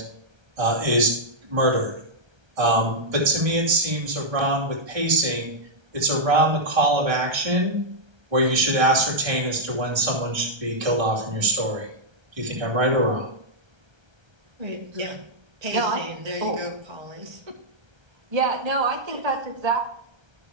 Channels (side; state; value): left; late; 1.3 ms